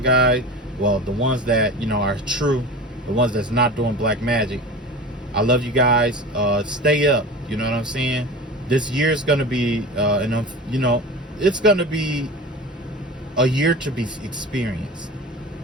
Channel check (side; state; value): both; normal; correlation 0.33